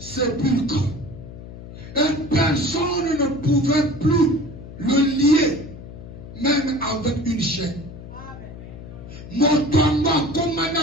Et personne ne pouvait plus le lier, même avec une chaîne. Motoamba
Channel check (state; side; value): noise; left; hum, 14 dB below the sound